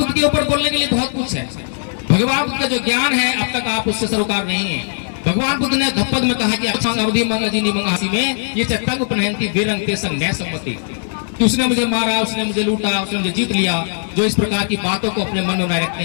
के ऊपर बोलने के लिए बहुत कुछ है। भगवान बुद्ध का जो ज्ञान है अब तक आप उससे सरोकार नहीं है। भगवान बुद्ध ने धप्पद में कहा कि अवधि मंगाजी मंगासी में ये चट्टा को पहनती बेरंग ते संग न सम्मति कि उसने मुझे मारा, उसने मुझे लूटा, उसने मुझे जीत लिया। जो इस प्रकार की बातों को अपने मन में बनाए रखते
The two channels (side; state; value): right; silent; digital silence